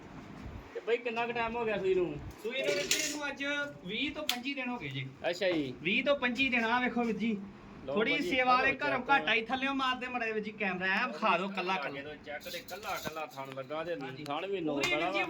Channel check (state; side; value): identical; both; correlation 1.00